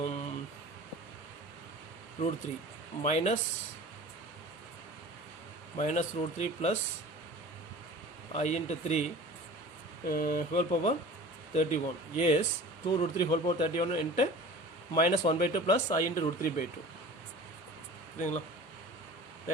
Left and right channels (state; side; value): normal; both; correlation 0.40